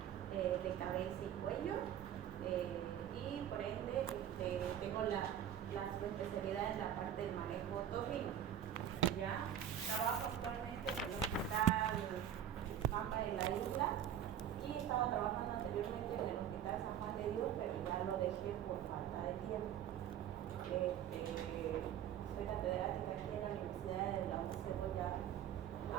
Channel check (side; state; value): left; quieter; 9.8 dB